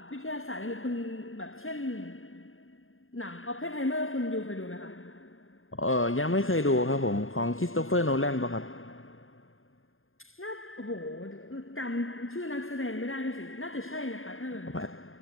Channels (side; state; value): right; late; 0.60 ms